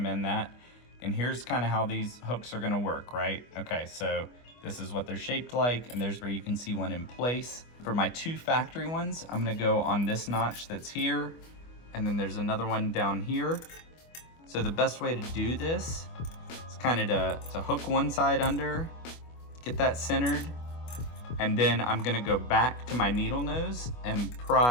that. And here's kind of how these hooks are gonna work, right? Okay, so this is what they're shaped like, and there's where you can see one in place. For my 2 factory ones, I'm gonna go on this notch that's here, and then there's another one down here. So the best way to do this is kind of to hook one side under, get that centered, and then I'm gonna go back to my needle nose and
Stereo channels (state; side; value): late; right; 25 ms